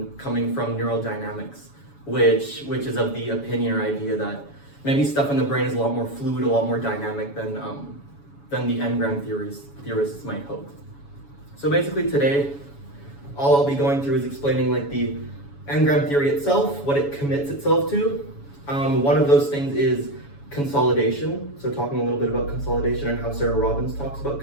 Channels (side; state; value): right; late; 7.1 ms